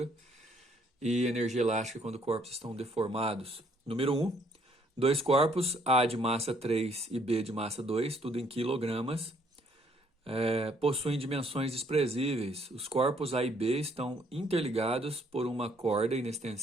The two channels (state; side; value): normal; both; correlation 0.66